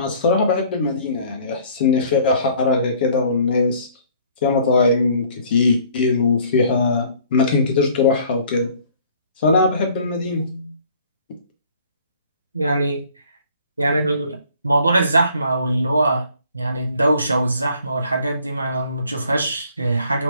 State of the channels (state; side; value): inverted; both; correlation -0.57